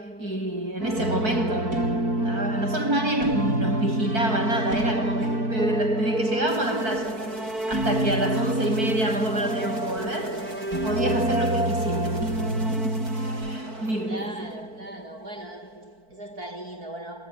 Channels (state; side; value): late; left; 4.5 ms